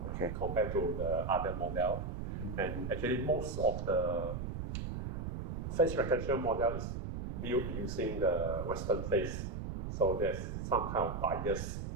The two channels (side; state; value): right; noise; rumble, 4 dB below the sound